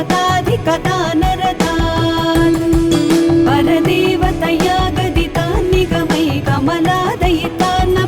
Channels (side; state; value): both; identical; correlation 1.00